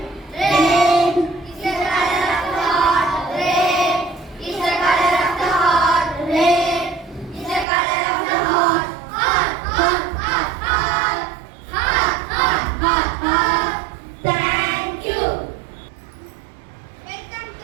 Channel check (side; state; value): left; drops out; at 7.7 s